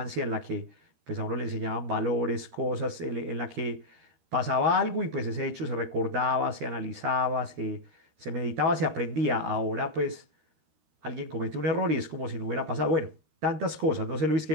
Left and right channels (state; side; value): late; left; 13 ms